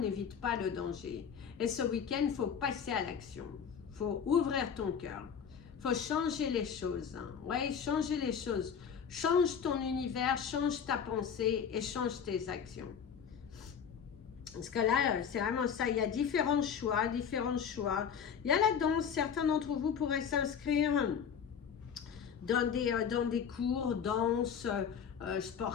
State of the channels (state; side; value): quieter; right; 7.3 dB